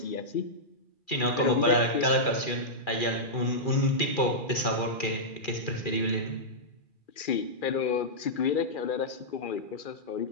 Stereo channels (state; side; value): late; right; 2.4 ms